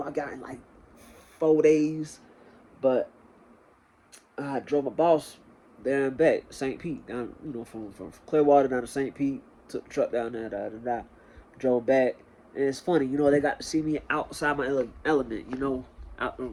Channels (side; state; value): both; identical; correlation 1.00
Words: got in like 4 days, but I drove my boss there and back, St. Pete, down, from Clearwater down to St. Pete. Took the truck down there, drove back, and it's funny, they got to see me outside my element, out,